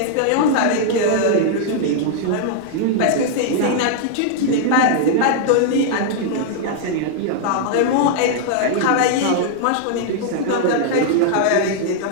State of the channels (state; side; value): different; both; correlation -0.01